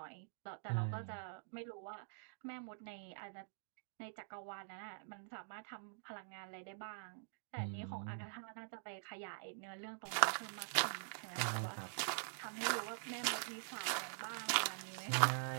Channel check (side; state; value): left; silent; digital silence